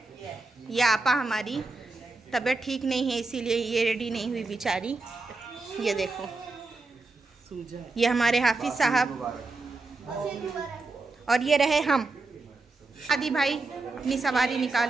ये आपा हमारी तबीयत ठीक नहीं है, इसीलिए ये रेडी नहीं हुई बेचारी। ये देखो, ये हमारे हाफिज साहब, और ये रहे हम। आदि भाई अपनी सवारी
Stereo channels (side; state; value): left; quieter; 3.4 dB